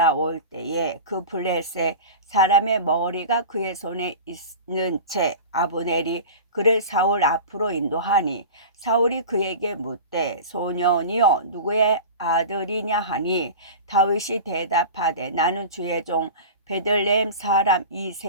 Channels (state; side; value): inverted; both; correlation -0.33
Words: 때에 그 블레셋 사람의 머리가 그의 손에 있는 채 아브넬이 그를 사울 앞으로 인도하니 사울이 그에게 묻되 소년이여 누구의 아들이냐 하니 다윗이 대답하되 나는 주의 종 베들레헴 사람